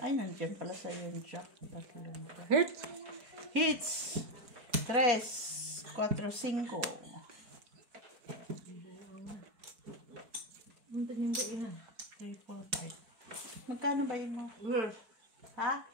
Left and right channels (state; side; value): late; left; 4.6 ms